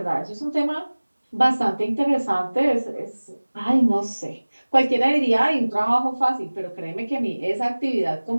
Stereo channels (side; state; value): both; inverted; correlation -1.00